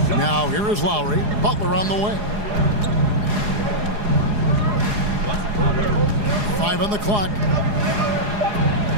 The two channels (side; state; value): left; late; 4.8 ms